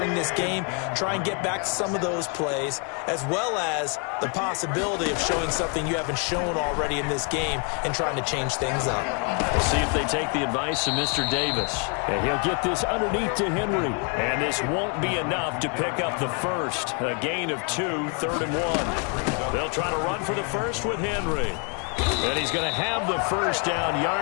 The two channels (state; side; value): quieter; right; 36.8 dB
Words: this game? Try and get back to some of those plays, as well as the possibility of showing something you haven't shown already in this game and trying to change things up. We'll see if they take the advice of Mr. Davis. And he'll get this underneath to Henry. And this won't be enough to pick up the first. A gain of 2, 3rd and 1. They'll try to run for the first with Henry. And he's going to have the first down